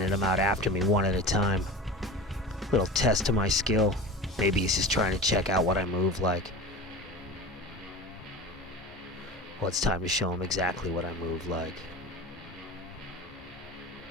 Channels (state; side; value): normal; both; correlation 0.32